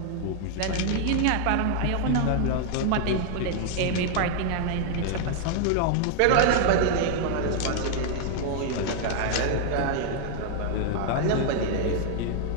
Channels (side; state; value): both; different; correlation 0.00